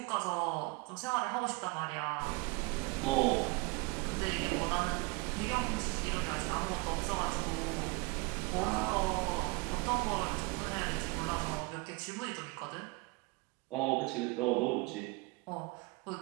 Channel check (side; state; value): left; quieter; 26.1 dB